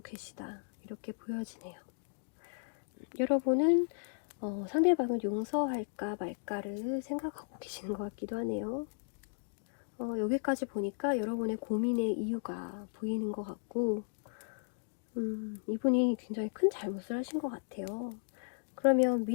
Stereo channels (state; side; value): silent; right; digital silence